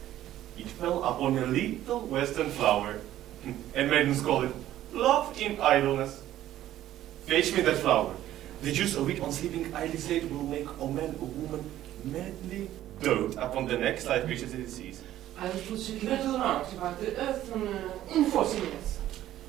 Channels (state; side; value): quieter; left; 13.1 dB